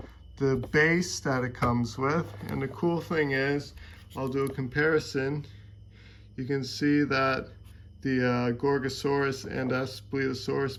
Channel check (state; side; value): identical; both; correlation 1.00